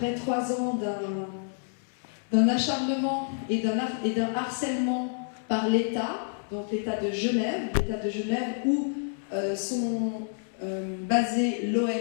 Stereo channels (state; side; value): silent; right; digital silence